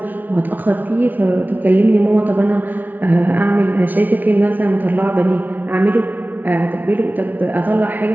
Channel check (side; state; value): left; late; 0.083 ms